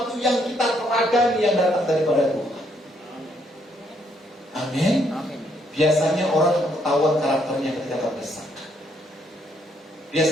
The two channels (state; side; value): normal; both; correlation 0.71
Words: yang kita teladani yang datang daripada Tuhan. Amin. Biasanya orang ketahuan karakternya ketika terdesak.